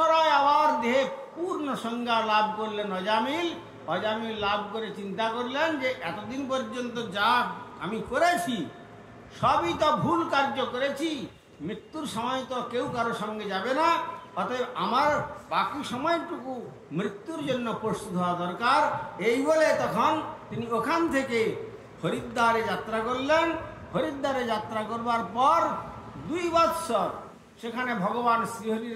আবার দেহে পূর্ণ সংজ্ঞা লাভ করলেন অজামিল। অজামিল লাভ করে চিন্তা করলেন যে এতদিন পর্যন্ত যা আমি করেছি সবই তো ভুল কার্য করেছি, মৃত্যুর সময় তো কেউ কারো সঙ্গে যাবে না, অতএব আমার বাকি সময়টুকু মৃত্যুর জন্য প্রস্তুত হওয়া দরকার। এই বলে তখন তিনি ওখান থেকে হরিদ্বারে যাত্রা করলেন। হরিদ্বারে যাত্রা করবার পর 2 বৎসর সেখানে ভগবান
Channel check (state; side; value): identical; both; correlation 1.00